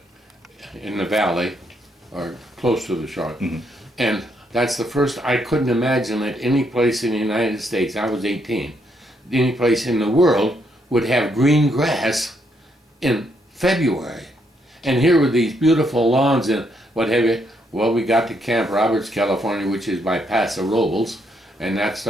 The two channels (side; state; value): both; normal; correlation 0.75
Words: in the valley, or close to the shore. And that's the first, I couldn't imagine that any place in the United States, I was 18, any place in the world would have green grass in February. And here were these beautiful lawns and what have you. Well, we got to Camp Roberts, California, which is by Paso Robles, and that